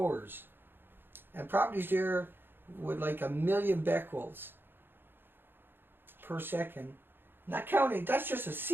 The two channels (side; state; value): left; late; 0.10 ms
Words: And properties there with like 1 million becquerels per second. Not counting, that's just a